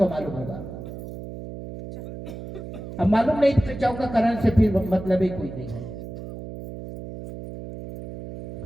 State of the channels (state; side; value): noise; right; hum, 10 dB below the sound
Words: मालूम होगा, अब मालूम नहीं तो चौका कराने से फिर मतलब ही कोई नहीं है।